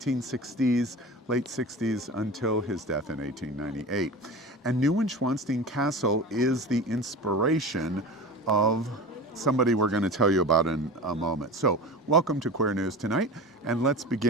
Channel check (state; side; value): normal; both; correlation 0.32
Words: late 60s, until his death in 1898. And Neuschwanstein Castle is the inspiration of somebody we're going to tell you about in a moment. So, welcome to Queer News Tonight, and let's